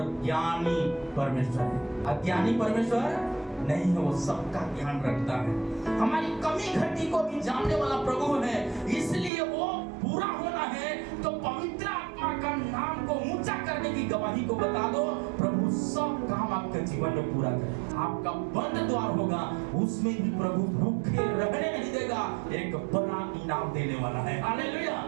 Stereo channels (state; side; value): drops out; left; at 9.3 s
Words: ज्ञानी परमेश्वर है, अज्ञानी परमेश्वर नहीं है, वो सबका ध्यान रखता है। हमारी कमी घटी को भी जानने वाला प्रभु है, इसलिए वो पूरा होना है तो पवित्र आत्मा का नाम को ऊंचा करने की गवाही को बता दो, प्रभु सब काम आपके जीवन में पूरा करे। आपका बंद द्वार होगा उसमें भी प्रभु भूखे रहने नहीं देगा, एक बड़ा इनाम देने वाला है। हालेलुया।